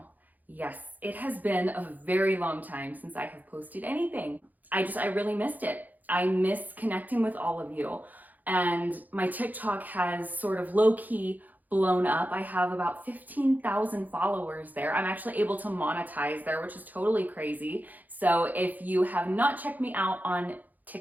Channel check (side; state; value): left; late; 0.082 ms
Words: Yes, it has been a very long time since I have posted anything. I really missed it. I miss connecting with all of you, and my TikTok has sort of low-key blown up. I have about 15,000 followers there. I'm actually able to monetize there, which is totally crazy. So if you have not checked me out on